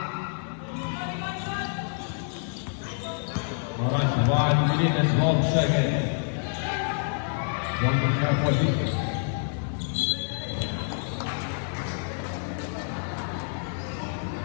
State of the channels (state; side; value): silent; right; 60 dB below the other